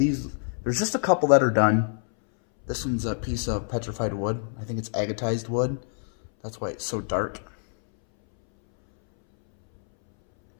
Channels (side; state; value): right; silent; 61 dB below the other